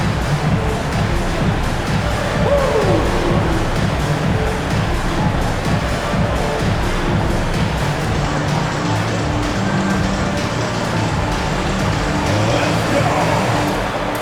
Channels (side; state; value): both; identical; correlation 1.00